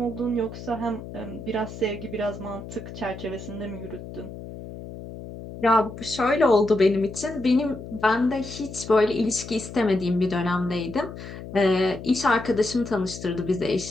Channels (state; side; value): noise; left; hum, 12 dB below the sound